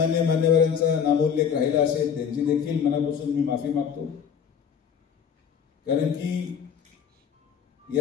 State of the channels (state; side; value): quieter; right; 7.5 dB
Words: मान्यवरांचा नामोल्लेख राहिला असेल त्यांची देखील मनापासून मी माफी मागतो. कारण की